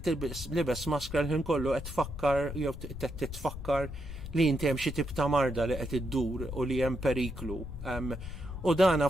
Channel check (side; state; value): left; noise; rumble, 9 dB below the sound